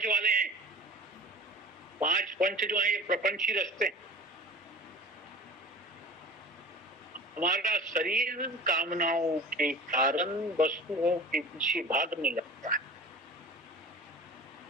वाले हैं, 5 पंच जो है ये प्रपंची रस्ते। हमारा शरीर कामनाओं के कारण वस्तुओं के पीछे भागने लगता है,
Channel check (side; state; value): both; normal; correlation 0.39